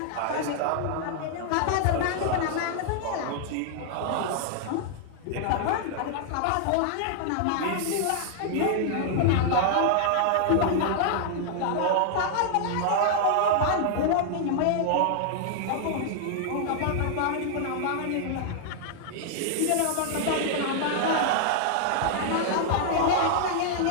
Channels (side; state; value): both; different; correlation 0.00